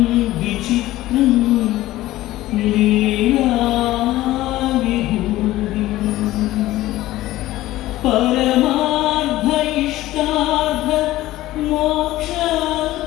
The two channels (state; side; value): quieter; right; 16.2 dB